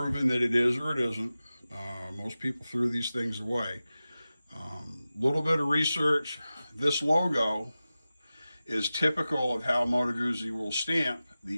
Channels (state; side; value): inverted; both; correlation -0.95